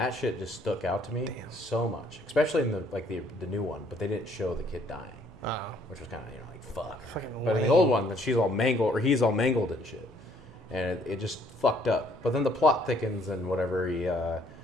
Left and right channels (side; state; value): both; normal; correlation 0.63